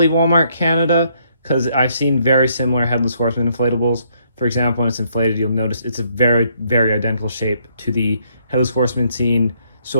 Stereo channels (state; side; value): inverted; both; correlation -0.69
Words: Walmart Canada, because I've seen very similar Headless Horseman inflatables. For example, when it's inflated, you'll notice it's a very, very identical shape to the Headless Horseman scene